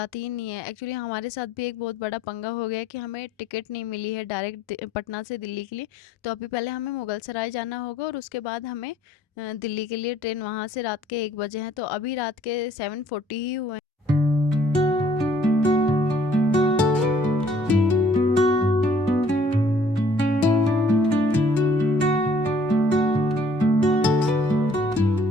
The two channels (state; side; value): normal; both; correlation 0.60